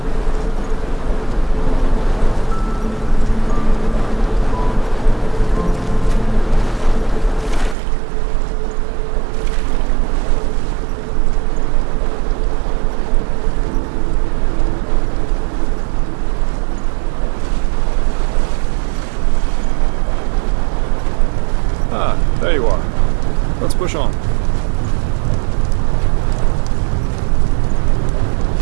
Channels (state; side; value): drops out; left; at 7.8 s